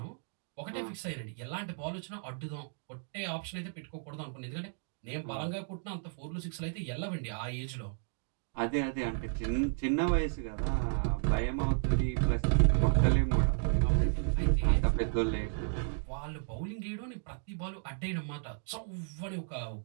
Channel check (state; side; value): silent; left; digital silence